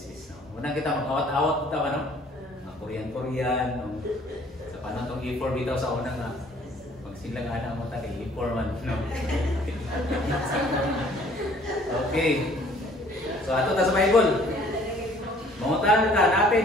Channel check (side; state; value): both; normal; correlation 0.56